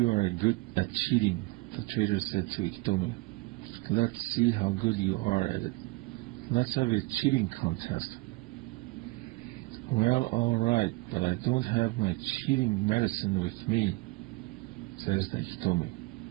are good at cheating," the trader said to Iktomi. "Let's see how good you are at it. Let's have a cheating contest." "Well, all right, but I don't have my cheating medicine with me," says the Iktomi.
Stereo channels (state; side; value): quieter; left; 22.5 dB